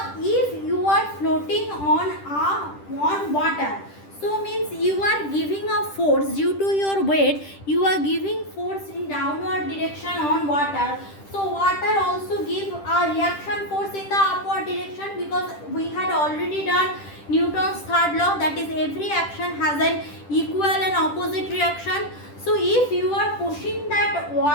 if you are floating on water, so means you are giving a force due to your weight, you are giving force in downward direction on water. So water also give a reaction force in the upward direction, because we had already done Newton's third law, that is every action has an equal and opposite reaction. So if you are pushing that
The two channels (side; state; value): right; late; 10 ms